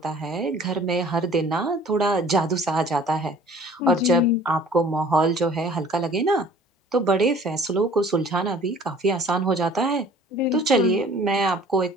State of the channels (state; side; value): normal; both; correlation 0.50